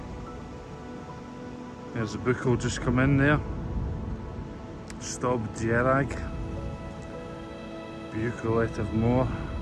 there's the Buchel just come in there. Stob Dierag, Buchelet of Moor.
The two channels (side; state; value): both; identical; correlation 1.00